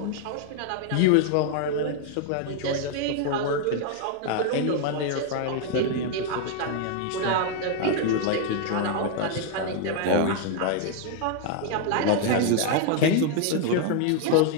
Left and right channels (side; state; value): both; different; correlation 0.00